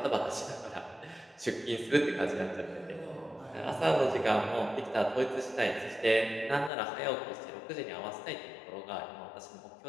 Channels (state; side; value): drops out; right; at 6.7 s